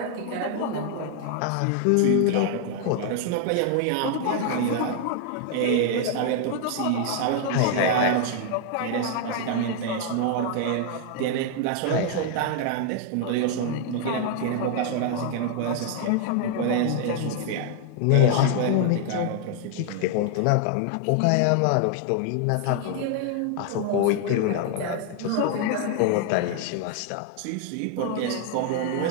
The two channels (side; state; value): both; different; correlation 0.00